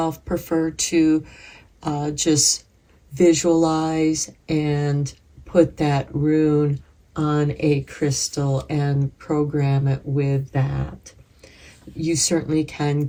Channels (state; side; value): identical; both; correlation 1.00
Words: prefer to just visualize and put that rune on a crystal and program it with that. You certainly can